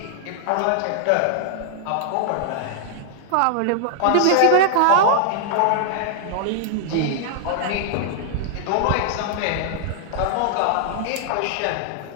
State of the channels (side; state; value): both; different; correlation -0.01